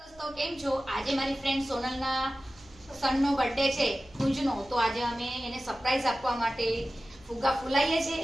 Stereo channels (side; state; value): right; noise; hum, 26 dB below the sound